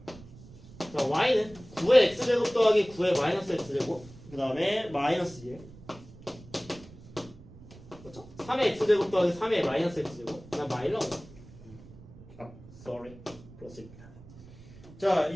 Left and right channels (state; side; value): noise; right; rumble, 19 dB below the sound